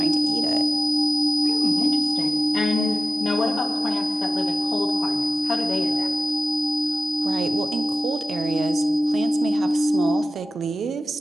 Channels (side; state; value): both; normal; correlation 0.95